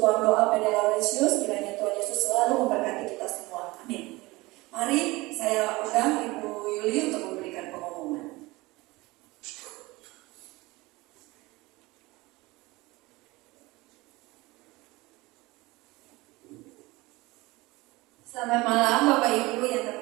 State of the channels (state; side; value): quieter; left; 21.6 dB